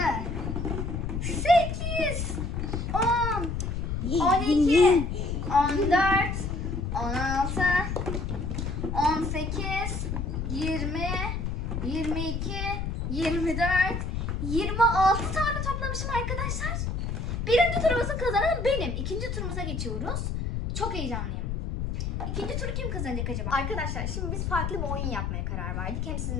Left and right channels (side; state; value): left; noise; rumble, 2 dB below the sound